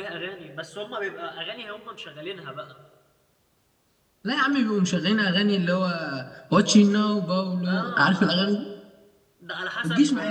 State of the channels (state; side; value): identical; both; correlation 1.00